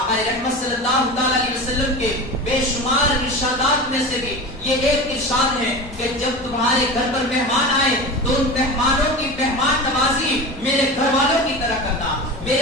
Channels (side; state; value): both; normal; correlation 0.29